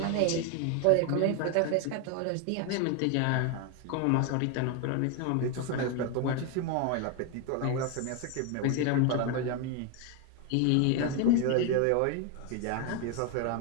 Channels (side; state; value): both; different; correlation 0.01